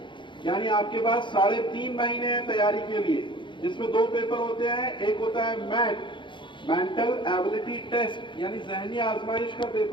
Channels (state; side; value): late; right; 0.23 ms